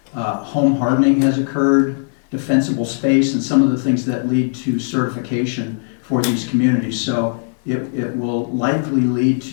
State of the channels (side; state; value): right; silent; 58 dB below the other